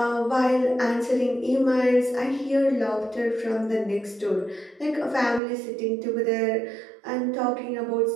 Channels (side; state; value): left; drops out; at 5.4 s